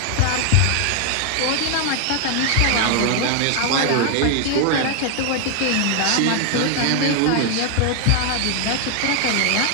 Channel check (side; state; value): both; different; correlation 0.00